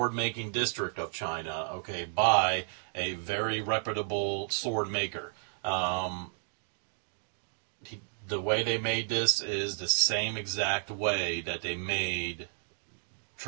making district of China, okay, by a very reputable sword maker. The way they made this is the same exact way that they made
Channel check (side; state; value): left; silent; digital silence